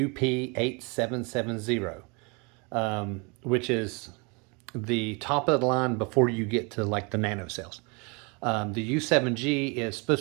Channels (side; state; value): left; quieter; 30.8 dB